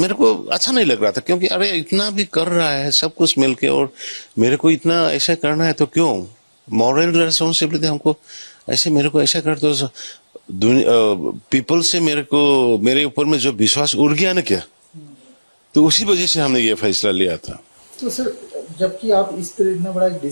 को अच्छा नहीं लग रहा था, क्योंकि अरे इतना भी कर रहा है सब कुछ मिलके और मेरे को इतना ऐसा करना है, तो क्यों मॉरल रेस्पॉन्सिबिलिटी हमको ऐसे मेरे को ऐसा कर दो। पीपल से मेरे ऊपर में जो विश्वास उड़ गया ना क्या, तो उसी वजह से हमने ये फैसला लिया था। तो सर जबकि आप इस तरह इतना बड़ा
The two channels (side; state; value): both; inverted; correlation -1.00